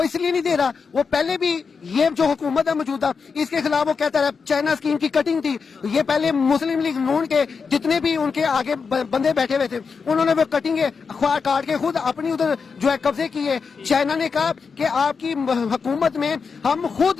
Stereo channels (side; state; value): right; quieter; 5.4 dB